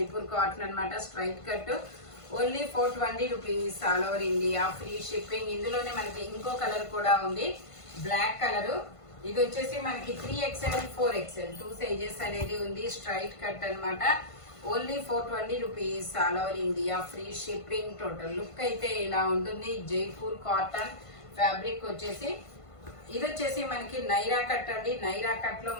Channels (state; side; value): late; right; 1.5 ms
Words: cotton అనమాట. Straight cut. Only 420 rupees all over India, free shipping. ఇందులోనే మనకి ఇంకో కలర్ కూడా ఉంది, బ్లాక్ కలర్. ఇది వచ్చేసి మనకి 3XL, 4XL 2 సైజెస్ అనేది ఉంది. స్ట్రైట్ కట్ అనమాట. Only 420 rupees all over India, free shipping. Total look అయితే ఇలా ఉంటుంది. జైపూర్ కాటన్ ఫ్యాబ్రిక్ వచ్చేసి. ఇది వచ్చేసి మనకి నైరా కట్ అండి. నైరా కట్ లో